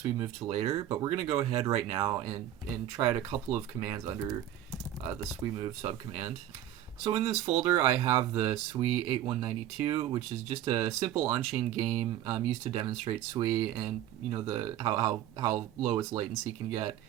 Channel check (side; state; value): left; quieter; 12.0 dB